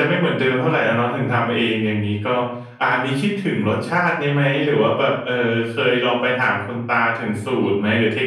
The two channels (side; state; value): both; identical; correlation 1.00